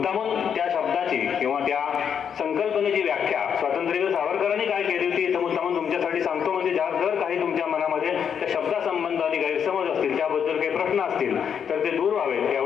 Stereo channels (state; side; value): quieter; right; 7.7 dB